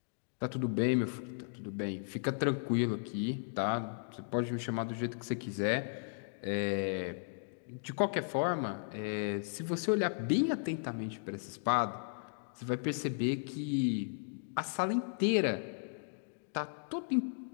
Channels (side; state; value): right; silent; digital silence